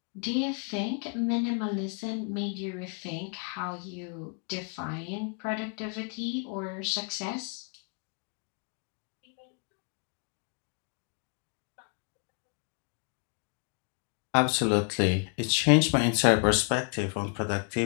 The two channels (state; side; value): quieter; right; 38.9 dB